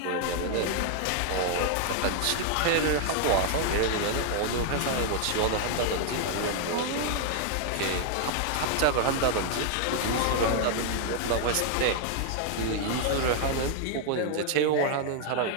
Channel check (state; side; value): different; both; correlation 0.00